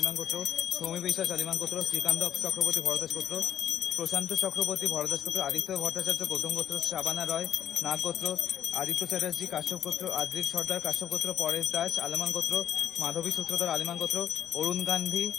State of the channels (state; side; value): quieter; right; 10.0 dB